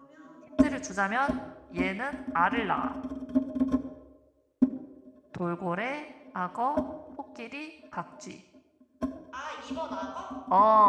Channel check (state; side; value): identical; both; correlation 1.00